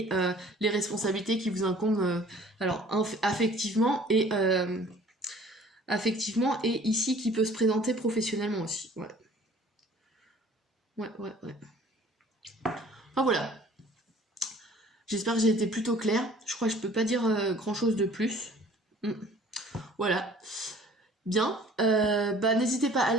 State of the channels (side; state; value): both; normal; correlation 0.52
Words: les responsabilités qui vous incombent, alors affectivement et ici qui peut se présenter professionnellement aussi. Ouais. Enfin voilà. J'espère que j'ai été plutôt claire. Je crois que je peux pas dire grand chose de plus. Voilà. Bien. N'hésitez pas à